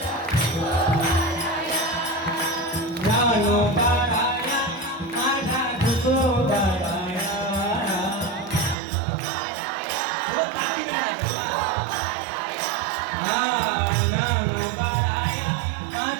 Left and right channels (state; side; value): drops out; left; at 8.8 s